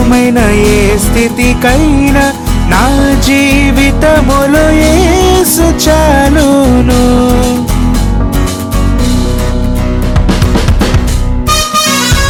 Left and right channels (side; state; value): both; identical; correlation 1.00